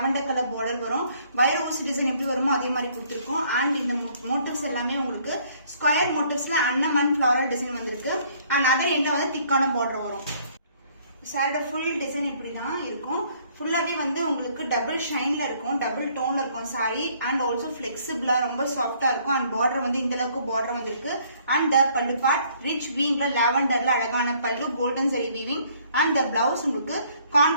கலர் பார்டர் வரும். வைர ஊசி டிசைன் எப்படி வருமோ அதே மாதிரி கொடுத்துருக்கோம். அண்ட் இந்த மோட்டிவ்ஸ் எல்லாமே உங்களுக்கு ஸ்கொயர் மோட்டிவ்ஸ்ல அன்னம் அண்ட் ஃபிளாரல் டிசைன் வந்திருக்கு. அண்ட் அதர் எண்ட்ல வந்து திக்கான பார்டர் வரும். சாரோட ஃபுல் டிசைன் இப்படிதான் இருக்கும். ஃபுல்லாவே வந்து உங்களுக்கு டபுள் ஷைன்ல இருக்கும், டபுள் டோன்ல இருக்கும் சாரி. அண்ட் ஆல்சோ பிளெக்சிபிளா ரொம்ப சாஃப்டா இருக்கும். அண்ட் பார்டர் வந்து இந்த அளவுக்கு பார்டர் வந்திருக்கு. அண்ட் பல்லு பார்ட் ரிச் வீவிங்ல லாவெண்டர்ல அழகான பல்லு, golden zari weaving. And blouse உங்களுக்கு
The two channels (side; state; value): both; inverted; correlation -0.62